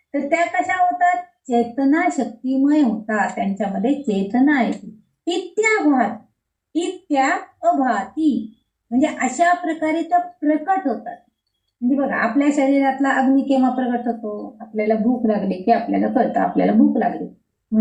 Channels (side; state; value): both; identical; correlation 1.00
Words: तर त्या कशा होतात, चेतना शक्तीमय होतात, त्यांच्यामध्ये चेतना येते. इत्या अभाती म्हणजे अशा प्रकारे त्या प्रकट होतात. म्हणजे बघा आपल्या शरीरातला अग्नी केव्हा प्रकट होतो, आपल्याला भूक लागली की आपल्याला कळतं आपल्याला भूक लागली,